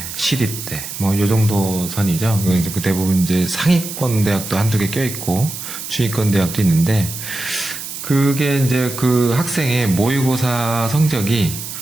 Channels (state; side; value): noise; right; hiss, 8 dB below the sound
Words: 시립대 요 정도 선이죠. 그 대부분 이제 상위권 대학도 한두 개 껴있고 중위권 대학도 있는데 그게 이제 그 학생의 모의고사 성적이